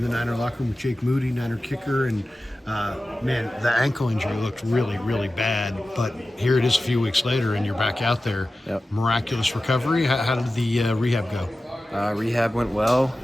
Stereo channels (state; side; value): normal; both; correlation 0.95